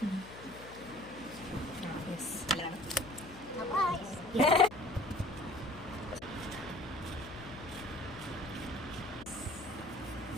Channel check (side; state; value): left; noise; hum, 15 dB below the sound